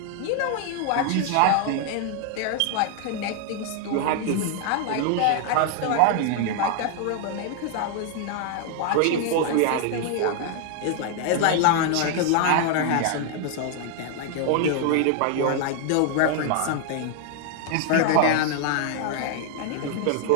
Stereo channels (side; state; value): both; different; correlation 0.00